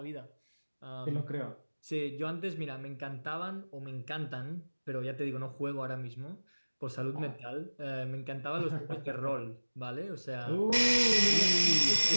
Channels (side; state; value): both; inverted; correlation -1.00